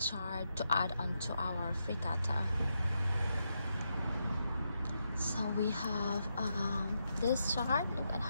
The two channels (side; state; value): both; inverted; correlation -0.84